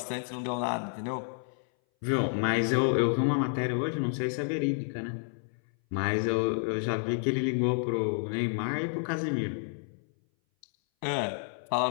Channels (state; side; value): silent; right; 58 dB below the other